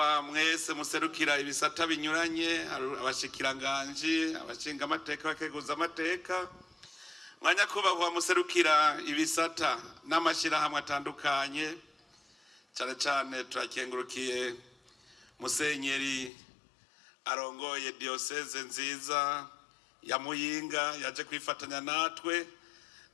mwese muserukira ibisata binyuranye, abashikiranganje, abashingamateka, abakenguzamateka, mwa nyakubahwa muserukira ibisata n'amashirahamwe atandukanye, cyane cyane turakengurukiye musenyeri arongoye diocese nziza ya Muyinga yaje kwifatanya natwe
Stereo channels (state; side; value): drops out; right; at 16.3 s